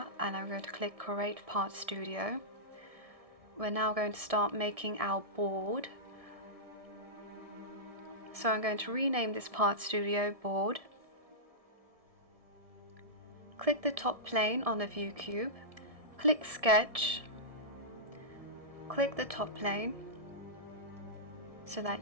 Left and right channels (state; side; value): late; left; 1.6 ms